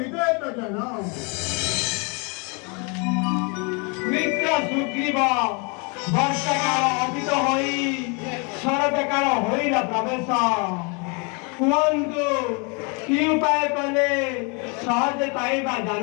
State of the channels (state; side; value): quieter; right; 32.9 dB